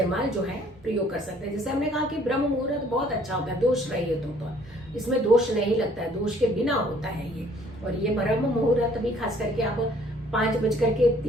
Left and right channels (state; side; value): normal; both; correlation 0.59